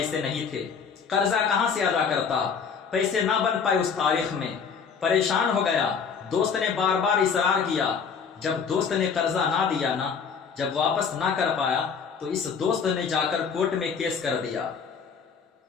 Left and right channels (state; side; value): quieter; right; 6.2 dB